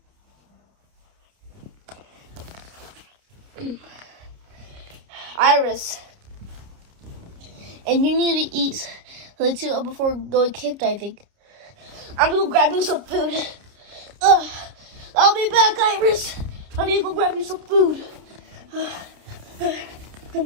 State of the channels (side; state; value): left; late; 29 ms